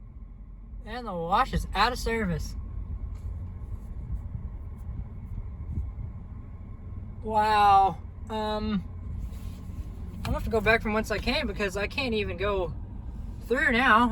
And the wash is out of service. Wow. I'm gonna have to go back from whence I came because I can't even go through now.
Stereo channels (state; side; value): identical; both; correlation 1.00